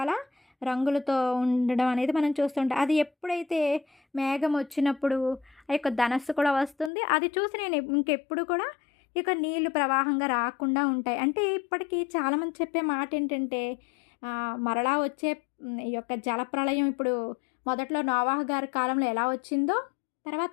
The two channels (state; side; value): drops out; right; at 6.9 s